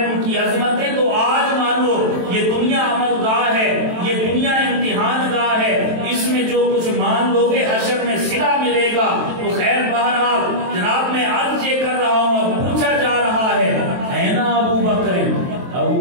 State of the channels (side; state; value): left; late; 23 ms